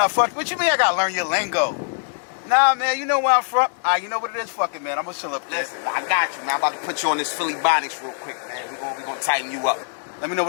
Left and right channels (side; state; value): right; silent; digital silence